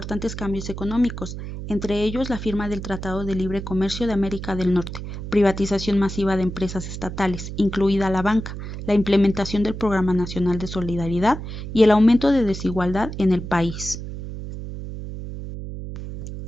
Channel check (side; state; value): right; noise; hum, 8 dB below the sound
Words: cambios económicos, entre ellos la firma del Tratado de Libre Comercio de América del Norte, privatización masiva de empresas estatales, incluida la banca, la implementación del Programa Nacional de Solidaridad y el aumento de desigualdad en el país.